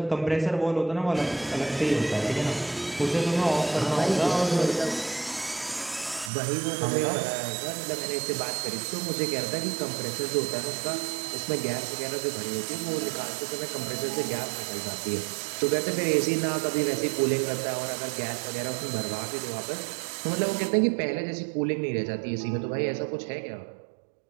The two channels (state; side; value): drops out; left; at 6.3 s